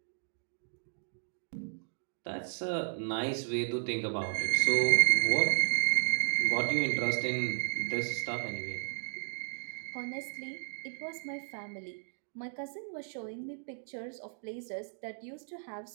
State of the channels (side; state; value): left; silent; digital silence